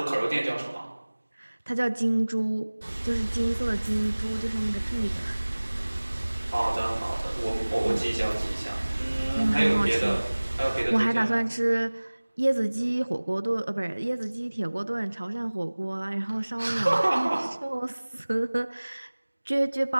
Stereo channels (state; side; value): inverted; both; correlation -1.00